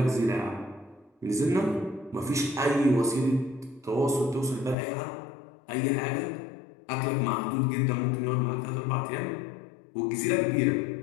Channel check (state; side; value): drops out; right; at 4.8 s